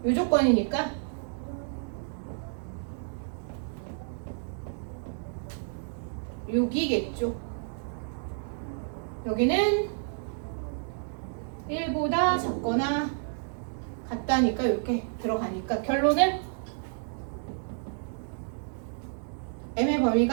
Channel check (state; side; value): silent; left; digital silence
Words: 이 조건이니까 여기겠죠. 여기는 1보다 작거나 같다니까 이렇게 들어가니까 결론은 m의